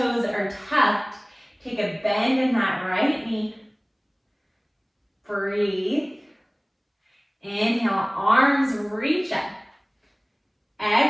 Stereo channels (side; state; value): both; identical; correlation 1.00